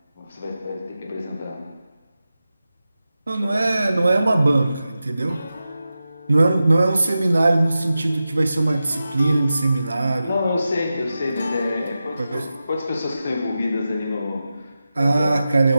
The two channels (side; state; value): both; inverted; correlation -0.93